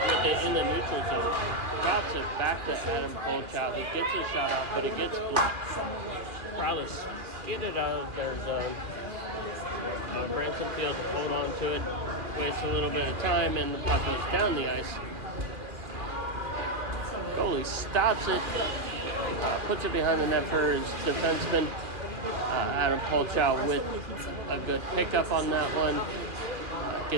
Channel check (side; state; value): left; late; 2.3 ms